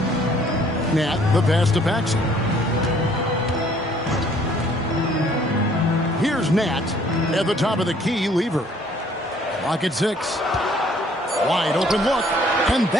Nat, the pass to Paxson. Here's Nat at the top of the key, Lever. Clock at 6. Wide open look, and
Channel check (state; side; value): normal; both; correlation 0.60